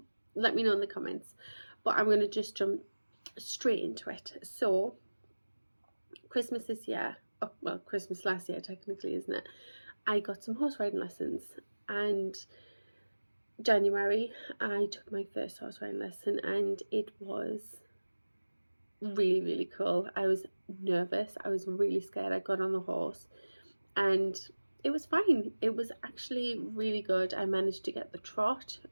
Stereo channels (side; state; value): both; inverted; correlation -1.00